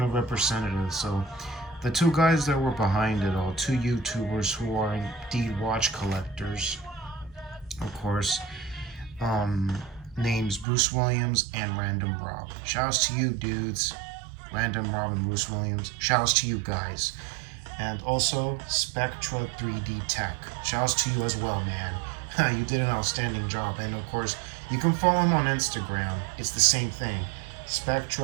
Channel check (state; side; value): drops out; left; at 10.7 s